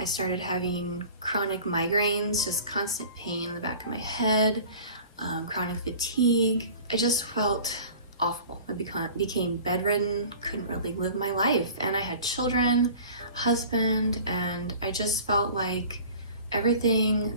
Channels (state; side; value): inverted; both; correlation -0.43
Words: I started having chronic migraines, just constant pain in the back of my head, chronic fatigue. I just felt awful. I became bedridden, couldn't really live my life. And I had children, husband, and I just felt like everything